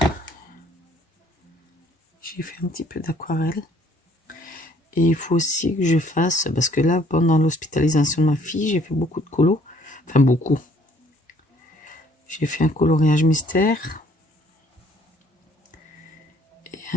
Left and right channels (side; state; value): both; normal; correlation 0.61